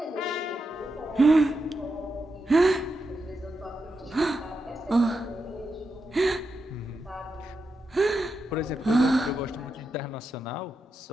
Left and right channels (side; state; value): both; normal; correlation 0.86